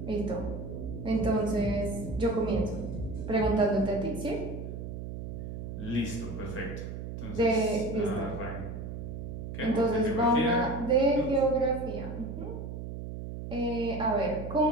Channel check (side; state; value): right; noise; hum, 7 dB below the sound